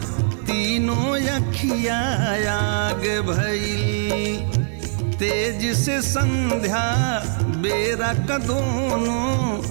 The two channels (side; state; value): left; silent; 64 dB below the other